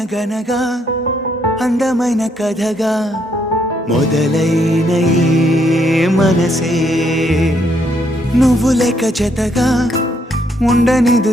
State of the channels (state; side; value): normal; both; correlation 0.73